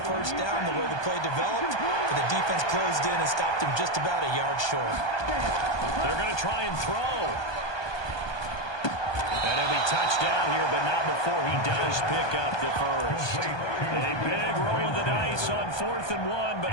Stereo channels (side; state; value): right; late; 1.2 ms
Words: first down the way the play developed, but the defense closed in and stopped him just about a yard short. They're going to try and throw. And he'll be touched down here, but not before he does pick up the first. A big roll of the dice on 4th and 1, but